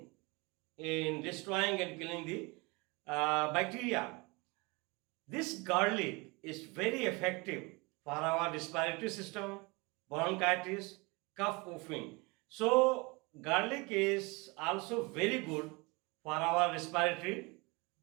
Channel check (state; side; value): quieter; left; 26.8 dB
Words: in destroying and killing the bacteria. This garlic is very effective for our respiratory system, bronchitis, cough coughing. So garlic is also very good for our respiratory